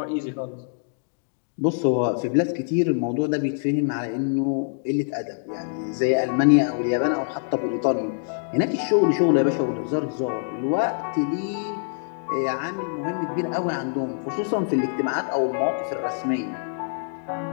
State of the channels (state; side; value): silent; right; digital silence